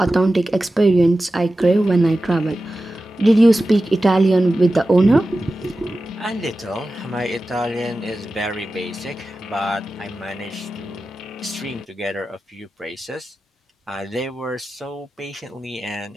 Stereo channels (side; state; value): both; normal; correlation 0.94